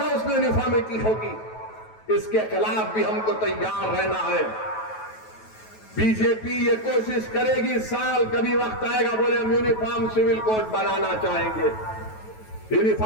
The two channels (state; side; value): late; right; 9.2 ms